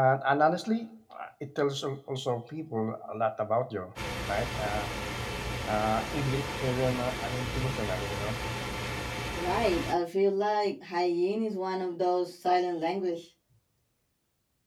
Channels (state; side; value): identical; both; correlation 1.00